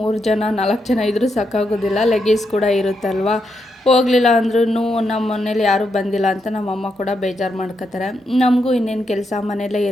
ಜನ 4 ಜನ ಇದ್ದರೂ ಸಾಕಾಗೋದಿಲ್ಲ, ಲಗೇಜ್ ಕೂಡ ಇರುತ್ತಲ್ವ. ಹೋಗಲಿಲ್ಲ ಅಂದ್ರೂ ನಮ್ಮ ಮನೇಲಿ ಯಾರೂ ಬಂದಿಲ್ಲ ಅಂತ ನಮ್ಮಮ್ಮ ಕೂಡ ಬೇಜಾರು ಮಾಡ್ಕೋತಾರೆ. ನಮಗೂ ಇನ್ನೇನು ಕೆಲಸ, ಮನೆಯಲ್ಲೇ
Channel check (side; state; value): both; normal; correlation 0.82